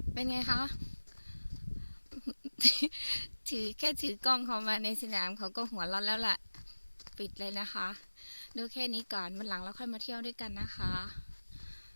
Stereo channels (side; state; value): both; inverted; correlation -1.00